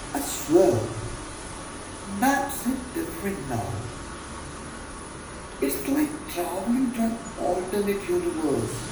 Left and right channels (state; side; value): identical; both; correlation 1.00